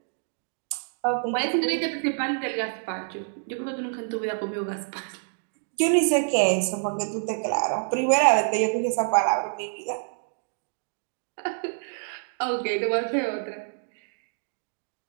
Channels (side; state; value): left; silent; 60 dB below the other